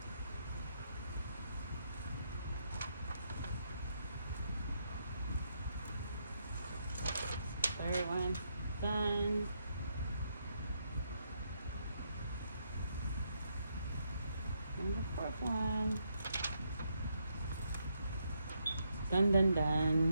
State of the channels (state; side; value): inverted; both; correlation -0.78